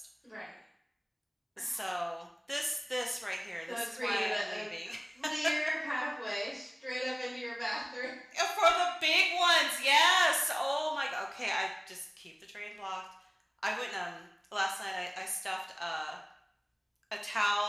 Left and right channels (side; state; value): both; identical; correlation 1.00